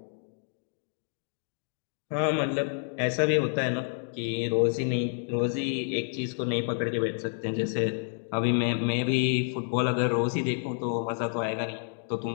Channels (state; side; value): silent; right; 58 dB below the other